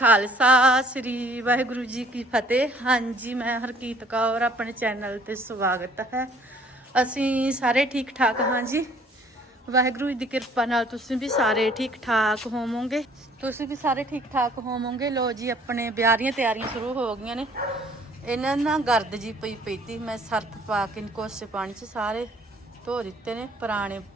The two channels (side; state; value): both; normal; correlation 0.57